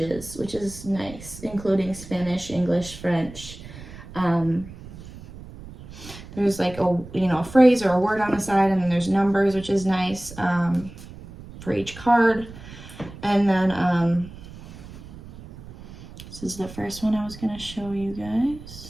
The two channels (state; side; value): noise; right; rumble, 16 dB below the sound